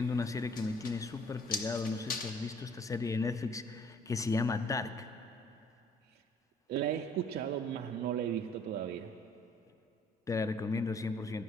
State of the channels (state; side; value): normal; both; correlation 0.57